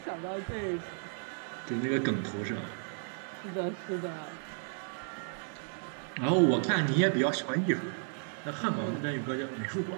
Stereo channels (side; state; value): left; silent; 55 dB below the other